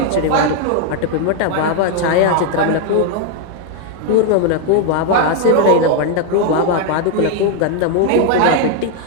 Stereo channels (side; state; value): both; different; correlation 0.00